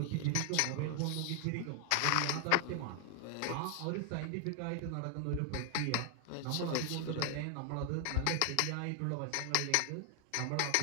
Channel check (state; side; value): different; both; correlation 0.00